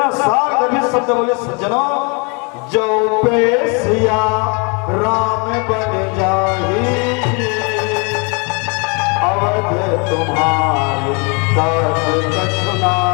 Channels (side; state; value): right; quieter; 33.4 dB